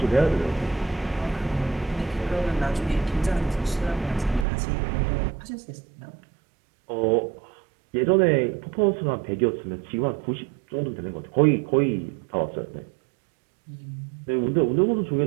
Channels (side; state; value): left; drops out; at 4.5 s